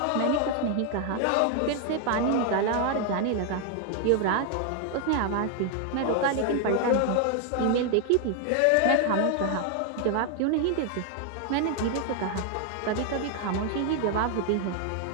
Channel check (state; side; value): different; both; correlation 0.00